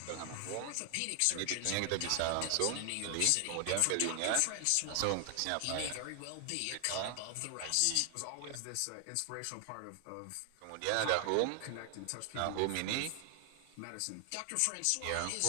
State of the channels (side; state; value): both; different; correlation 0.00